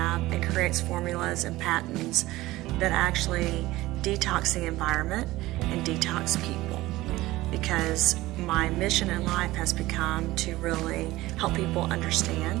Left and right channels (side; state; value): left; quieter; 18.0 dB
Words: and creates formulas and patents that actually detox the environment and detox people, because my mission in life has become to really help people